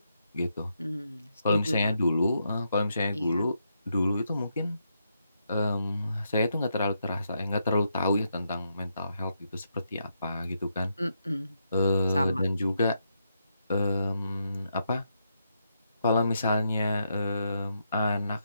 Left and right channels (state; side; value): inverted; both; correlation -0.81